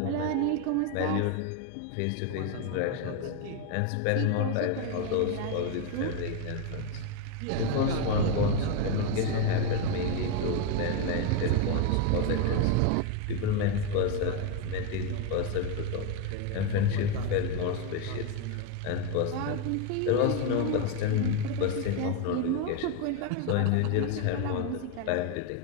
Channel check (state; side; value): different; both; correlation 0.02